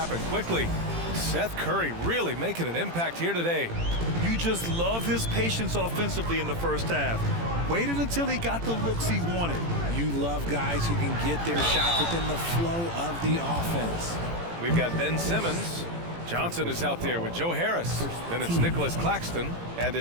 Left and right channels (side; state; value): left; late; 18 ms